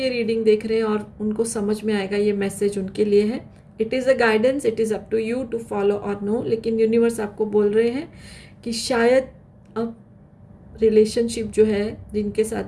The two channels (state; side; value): identical; both; correlation 1.00